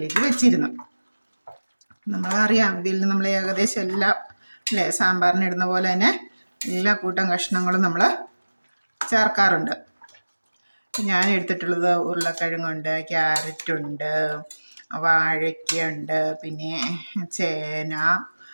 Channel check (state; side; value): inverted; both; correlation -1.00